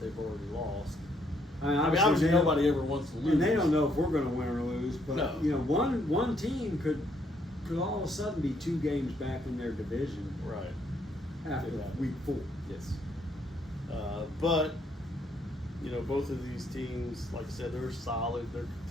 already lost. I mean, Obviously they don't- nobody ever wants to lose. And they don't know if we're going to win or lose, but No. one team could all of a sudden be 2 games back in their division Right. after Could happen. week 4. Yes. But, both of these teams, like I said, they're solid. They're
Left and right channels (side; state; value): both; normal; correlation 0.71